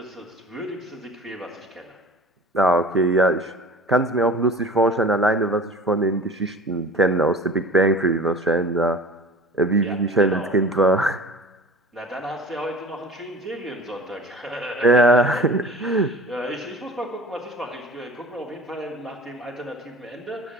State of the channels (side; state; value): both; normal; correlation 0.41